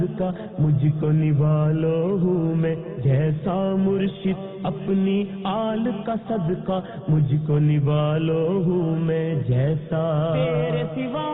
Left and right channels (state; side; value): identical; both; correlation 1.00